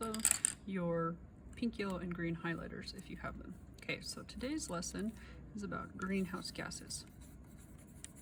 your pink, yellow, and green highlighters if you have them. Okay, so today's lesson is about greenhouse gases.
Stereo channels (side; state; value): both; identical; correlation 1.00